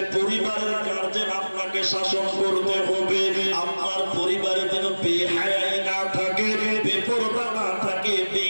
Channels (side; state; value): both; inverted; correlation -1.00